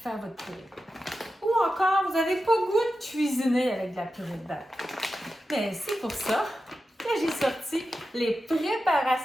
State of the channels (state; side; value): normal; both; correlation 0.91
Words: faire votre purée. Ou encore, vous n'avez pas le goût de cuisiner avec de la purée de dattes. Mais c'est pour ça que j'ai sorti les